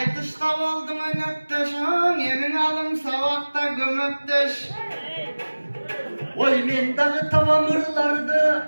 dışta oldum önöpteşin, yemin alım savakta gömöpteş. Oy men dağı tavamırlardı,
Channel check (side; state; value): both; inverted; correlation -1.00